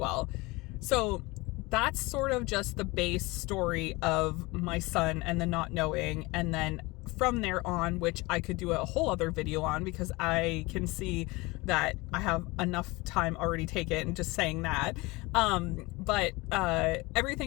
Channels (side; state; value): right; quieter; 23.4 dB